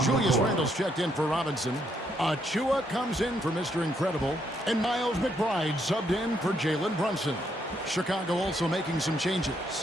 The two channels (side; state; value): both; normal; correlation 0.74